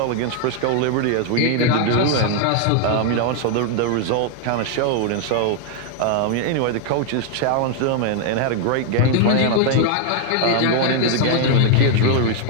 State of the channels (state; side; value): different; both; correlation 0.00